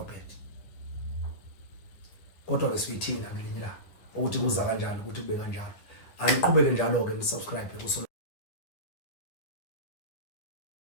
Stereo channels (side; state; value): right; late; 10 ms